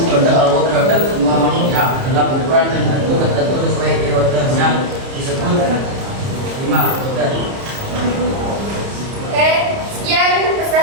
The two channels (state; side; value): late; left; 30 ms